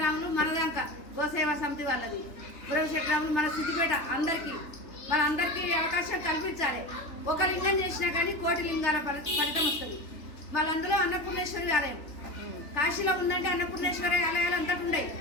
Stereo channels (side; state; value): right; late; 3.4 ms